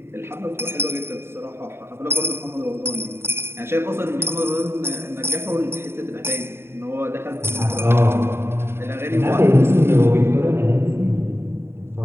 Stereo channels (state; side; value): late; left; 0.12 ms